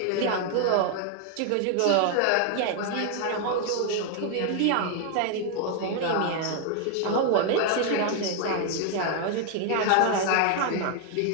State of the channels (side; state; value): both; different; correlation 0.00